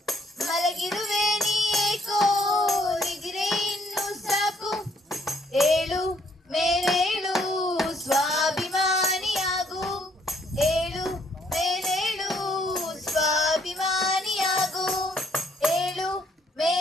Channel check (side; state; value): both; normal; correlation 0.67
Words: ಮಲಗಿರುವೆ ನೀ ಏಕೋ ನಿದ್ರೆ ಇನ್ನು ಸಾಕು ಏಳು ಮೇಲೇಳು ಸ್ವಾಭಿಮಾನಿಯಾಗು ಏಳು ಮೇಲೇಳು ಸ್ವಾಭಿಮಾನಿಯಾಗು ಏಳು